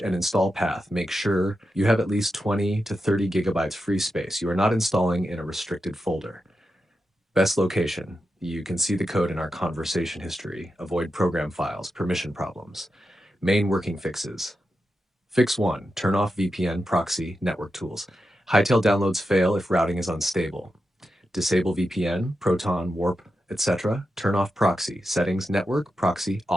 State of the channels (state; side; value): normal; both; correlation 0.89